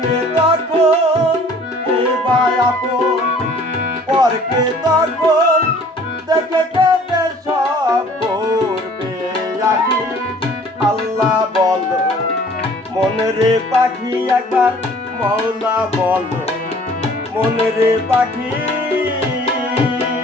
তখন, এবার আপন পরকে তখন, দেখে কেটে সব করবে আখি আল্লাহ বলো, মনে রে পাখি একবার মওলা বলো, মনে রে পাখি।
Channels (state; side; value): normal; both; correlation 0.52